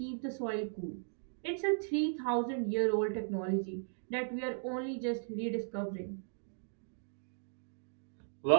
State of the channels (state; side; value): silent; left; digital silence